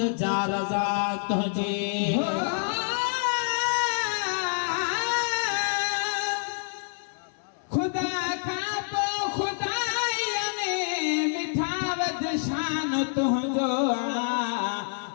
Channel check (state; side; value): silent; right; 60 dB below the other